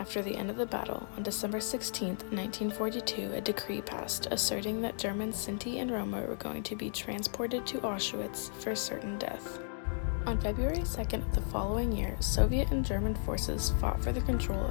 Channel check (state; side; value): silent; right; digital silence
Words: the end of the battle, on December 16, 1942, a decree passed asserting that German Sinti and Roma were going to be transported to Auschwitz for certain death. On February 2nd of the following year, Soviet and German forces fought for the control